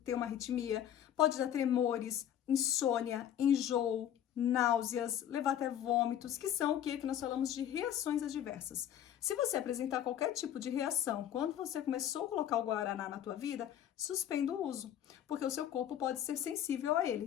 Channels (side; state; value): right; quieter; 10.5 dB